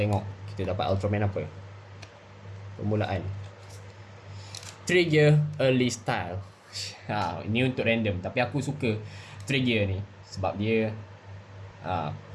kita dapat Ultraman apa. Permulaan Trigger Early Style. Ini untuk random, tapi aku suka Trigger ni sebab dia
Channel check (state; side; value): identical; both; correlation 1.00